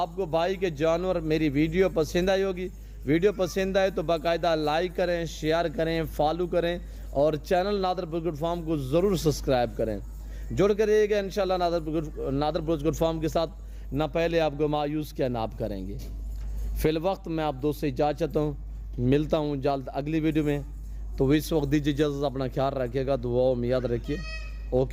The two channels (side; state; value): both; identical; correlation 1.00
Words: کو بھائی کے جانور میری ویڈیو پسند آئی ہوگی. ویڈیو پسند آئے تو باقاعدہ لائک کریں, شیئر کریں, فالو کریں اور چینل نادر بزگر فارم کو ضرور سبسکرائب کریں. جڑ کر رہیے گا انشاءاللہ نادر بزگر فارم کے ساتھ. نہ پہلے آپ کو مایوس کیا نہ آپ کریں گے. فی الوقت میں آپ دوست سے اجازت چاہتا ہوں, ملتا ہوں جلد اگلی ویڈیو میں. تو اس وقت دیجیے اجازت, اپنا خیال رکھیے گا, دعاؤں میں یاد رکھیے.